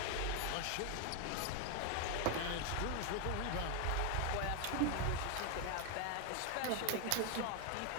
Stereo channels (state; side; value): different; both; correlation 0.01